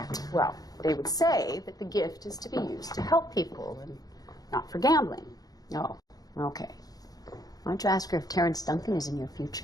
Well, they would say that the gift is to be used to help people and not for gambling. Oh, okay. Why don't you ask her if Terrence Duncan is in your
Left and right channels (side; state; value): right; late; 0.18 ms